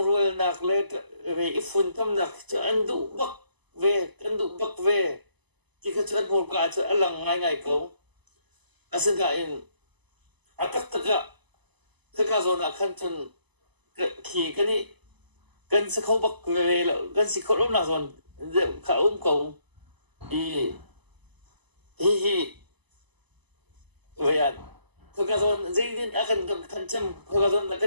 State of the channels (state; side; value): late; left; 1.0 ms